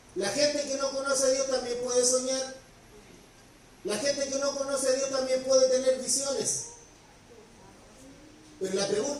La gente que no conoce a Dios también puede soñar. La gente que no conoce a Dios también puede tener visiones. Pero la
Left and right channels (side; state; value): both; identical; correlation 1.00